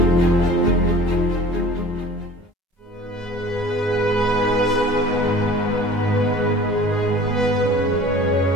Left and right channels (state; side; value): normal; both; correlation 0.45